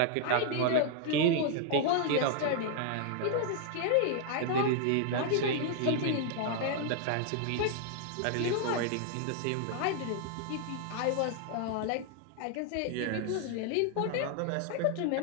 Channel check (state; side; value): different; both; correlation 0.00